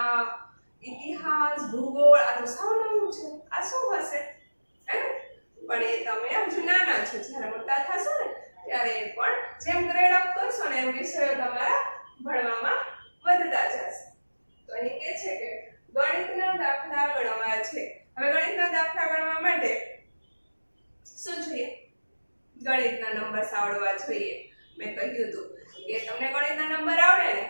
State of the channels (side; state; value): both; inverted; correlation -1.00